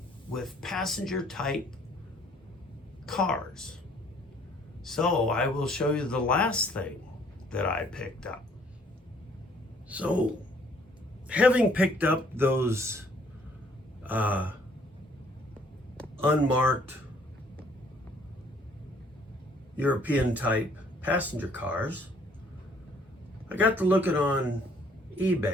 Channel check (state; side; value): normal; both; correlation 0.61